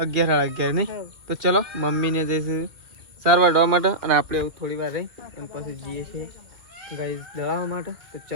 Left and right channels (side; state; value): left; late; 2.1 ms